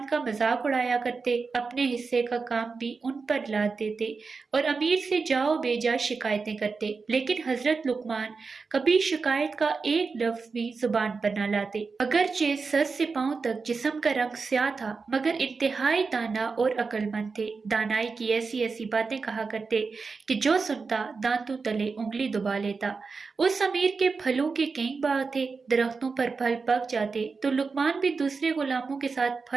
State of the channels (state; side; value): quieter; left; 4.6 dB